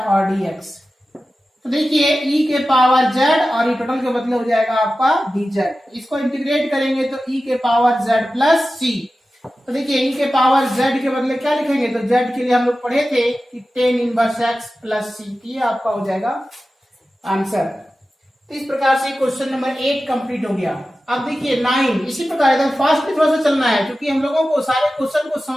और डी एक्स। तो देखिए e के पावर z और ये टोटल के बदले हो जाएगा आपका dz। इसको इंटीग्रेट करेंगे तो e के पावर z प्लस c। तो देखिए e के पावर z के बदले क्या लिखेंगे, तो z के लिए हम लोग पढ़े थे कि tan inverse x plus c, ये आपका हो जाएगा आंसर। तो इस प्रकार से क्वेश्चन नंबर 8 कंप्लीट हो गया। अब देखिए 9, इसी प्रकार एकदम फास्ट भी थोड़ा सा चलना है क्योंकि हम लोगों को सारे क्वेश्चन को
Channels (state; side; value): normal; both; correlation 0.94